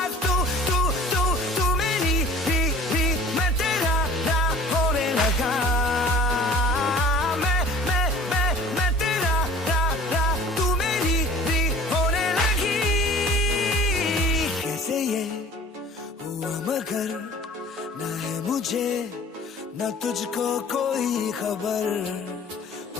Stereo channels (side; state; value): both; normal; correlation 0.46